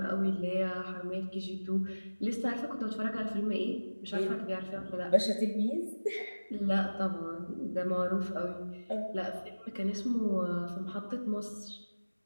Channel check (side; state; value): both; inverted; correlation -1.00